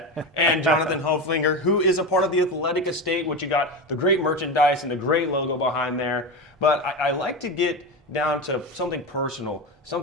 and Jonathan Hoeflinger, who is a part of the athletic estate, which you got the great merchandise and the great logo behind there. But I like to get down to something personal,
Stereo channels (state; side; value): normal; both; correlation 0.20